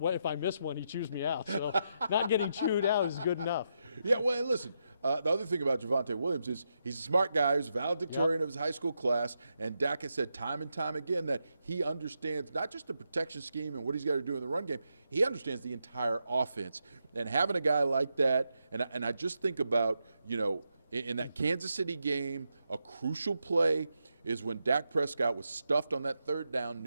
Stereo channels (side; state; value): both; inverted; correlation -0.84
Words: I miss one, he chews me out. So not getting chewed out is good enough. Yeah, well, and listen, the other thing about Javonte Williams is he's a smart guy. He's a valedictorian of his high school class, and Dak has said time and time again that he understands not just the protection scheme and what he's got to do in the run game, he understands the entire offense. And having a guy like that, and I just think about, in that Kansas City game, a crucial play is when Dak Prescott was stuffed on that third down